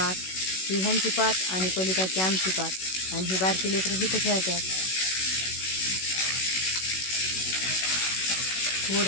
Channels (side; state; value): right; late; 16 ms